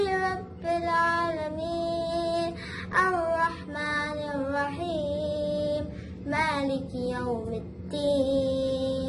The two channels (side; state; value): both; identical; correlation 1.00